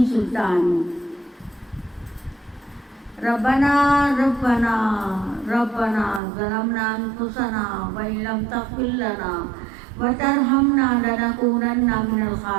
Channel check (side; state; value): left; drops out; at 6.2 s